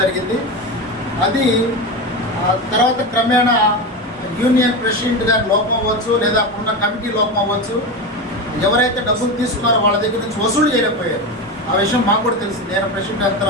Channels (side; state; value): both; normal; correlation 0.20